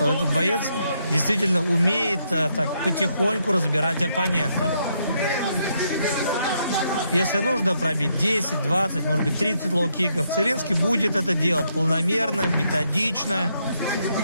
этот боец действительно умеет так потихоньку разбирать оппонентов. Если нужно пробить 10, 20, может быть 30 лоу-киков, Целинский будет это делать планомерно, методично.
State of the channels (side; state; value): both; inverted; correlation -0.77